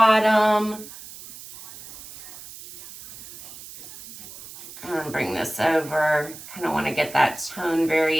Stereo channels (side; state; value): right; noise; hiss, 16 dB below the sound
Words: And bring this over. Kind of want to get that tone